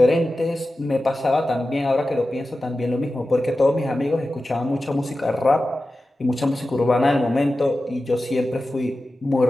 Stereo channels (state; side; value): normal; both; correlation 0.94